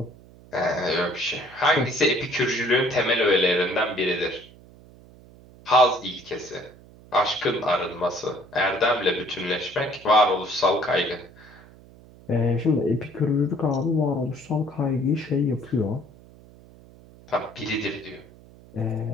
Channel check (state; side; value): noise; right; hum, 23 dB below the sound